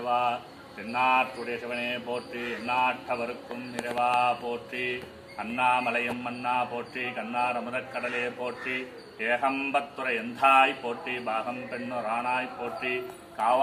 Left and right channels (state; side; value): identical; both; correlation 1.00